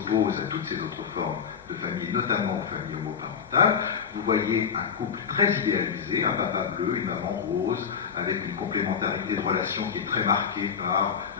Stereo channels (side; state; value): right; quieter; 6.8 dB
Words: à toutes ces autres formes de famille, notamment aux familles homoparentales, vous voyez un couple très idéalisé, un papa bleu, une maman rose, avec une complémentarité de relations qui est très marquée par